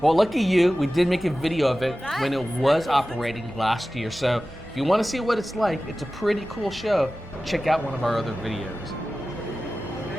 well, lucky you, we did make a video of it when it was operating last year. So if you want to see what it's like, it's a pretty cool show. Check out one of our other videos.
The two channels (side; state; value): both; normal; correlation 0.95